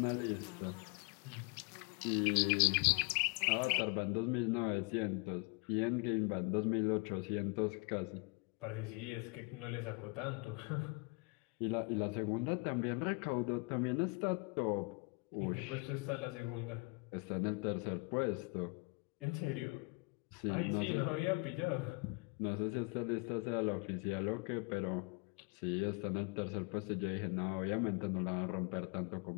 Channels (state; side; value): quieter; right; 31.0 dB